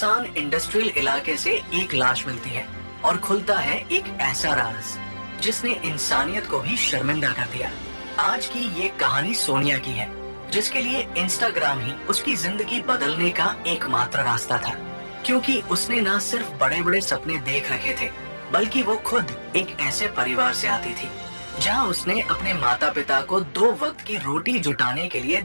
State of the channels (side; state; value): both; inverted; correlation -1.00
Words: इंडस्ट्रियल इलाके से एक लाश मिलती है और खुलता है एक ऐसा राज जिसने इंसानियत को भी शर्मिंदा कर दिया। आज की ये कहानी सोनिया की है, जिसके लिए इंस्टाग्राम ही उसकी जिंदगी बदलने का एकमात्र रास्ता था। क्योंकि उसने न सिर्फ बड़े बड़े सपने देख रखे थे, बल्कि वो खुद एक ऐसे परिवार से आती थी जहां उसने अपने माता पिता को 2 वक्त की रोटी जुटाने के लिए